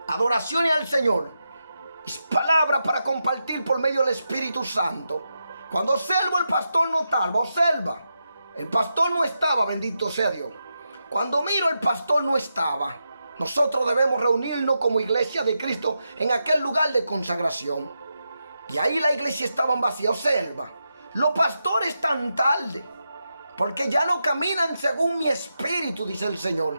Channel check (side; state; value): both; inverted; correlation -0.87